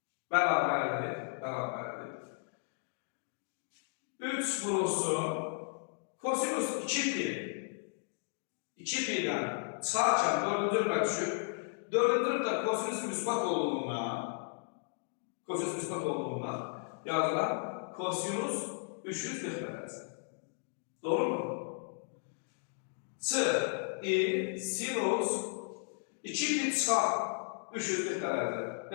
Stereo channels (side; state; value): right; silent; 55 dB below the other